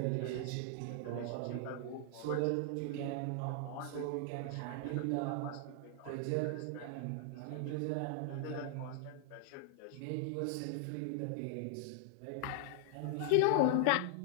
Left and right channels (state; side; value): different; both; correlation 0.00